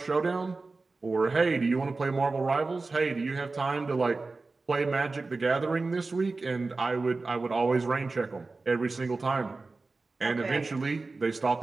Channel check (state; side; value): quieter; left; 3.7 dB